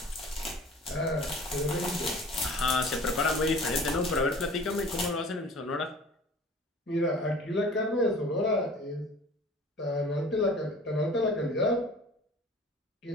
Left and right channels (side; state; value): both; normal; correlation 0.44